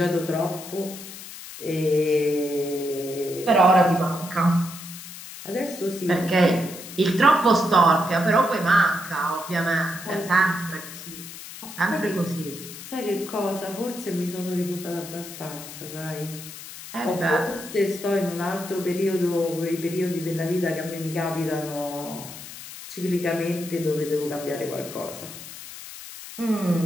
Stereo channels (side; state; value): left; noise; hiss, 13 dB below the sound